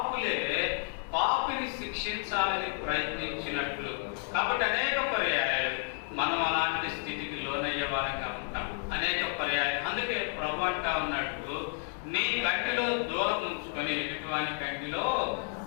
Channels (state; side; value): silent; right; 57 dB below the other